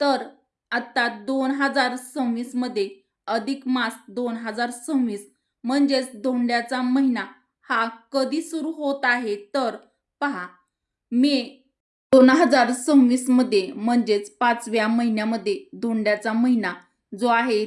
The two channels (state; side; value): identical; both; correlation 1.00